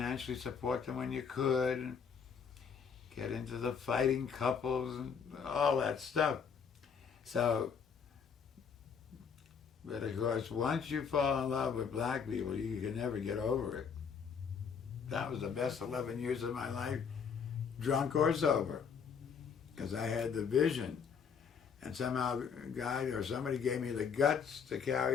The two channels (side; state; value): right; quieter; 6.5 dB